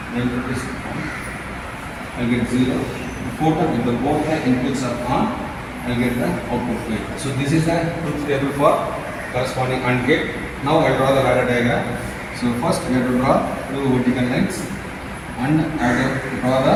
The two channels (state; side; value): identical; both; correlation 1.00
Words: the input is 1, I will get 0. The fourth one, if the both the inputs are on, I will get the output 8. So this is the truth table for corresponding AND gate. Now I will draw the ladder diagram. So first we have to draw two vertical lines and I have to draw the